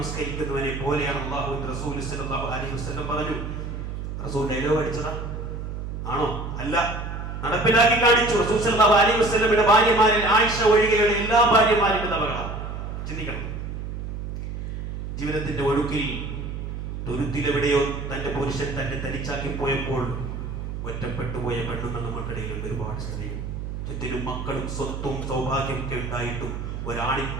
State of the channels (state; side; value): noise; right; hum, 6 dB below the sound